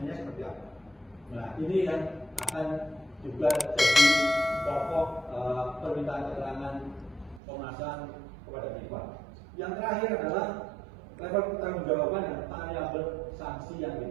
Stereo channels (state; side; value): drops out; left; at 7.4 s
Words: seperti apa? Nah, ini yang akan juga jadi pokok permintaan keterangan Komnas HAM kepada FIFA. Yang terakhir adalah level pertanggungjawaban dan variabel sanksi yang